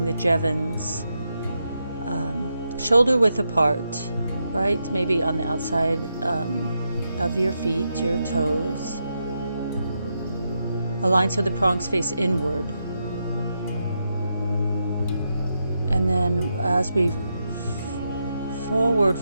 the Jevins shoulder width apart, right? Maybe on the outside of your feet, your toes. Align so the prongs face inward. And then as we forward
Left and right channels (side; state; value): both; inverted; correlation -0.84